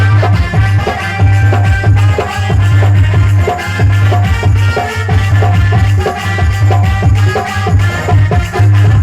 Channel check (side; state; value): both; identical; correlation 1.00